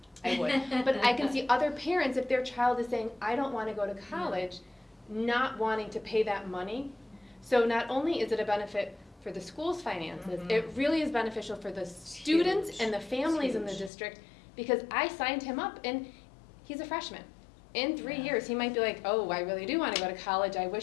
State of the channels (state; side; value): drops out; right; at 13.9 s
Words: I would. But I can see other parents, if their child is saying, I don't want to go to college, not wanting to pay that money. So not only is it a benefit for the school's finances, it really is beneficial for the students and the families in the district because I signed him up and he's a freshman. In 3 years, he might be like, oh, I really do want to go to college. I